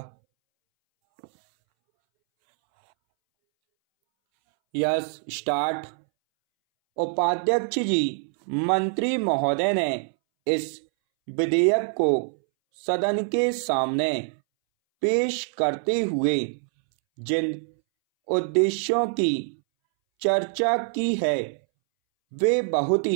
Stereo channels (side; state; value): left; silent; 62 dB below the other